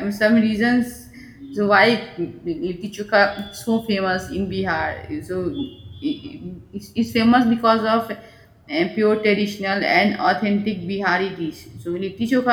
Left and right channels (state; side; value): identical; both; correlation 1.00